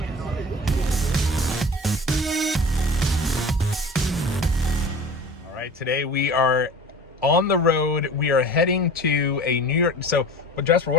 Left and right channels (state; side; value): normal; both; correlation 0.38